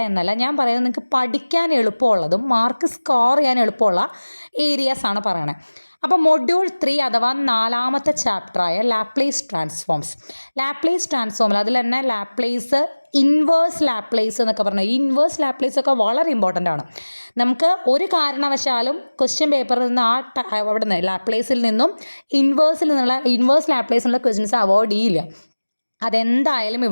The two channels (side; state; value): both; inverted; correlation -1.00